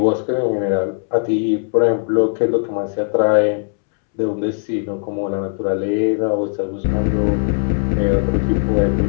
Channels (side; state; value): right; silent; 67 dB below the other